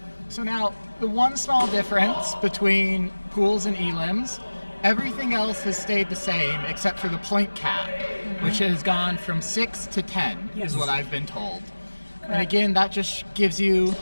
So now, the one small difference between pools and elims, everything else has stayed the same except for the point cap, which has gone from 6 to 10, is what I've been told. And again, that just gives you,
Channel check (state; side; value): inverted; both; correlation -1.00